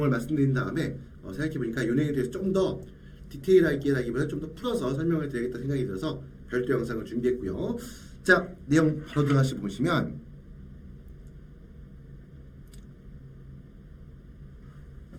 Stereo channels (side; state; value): both; identical; correlation 1.00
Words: 말씀드린 다음에 생각해보니까 이 내용에 대해서 좀 더 디테일하게라기보다 좀 더 풀어서 설명을 드려야겠다 생각이 들어서 별도 영상을 준비했고요. 자, 내용 바로 들어가시 보시면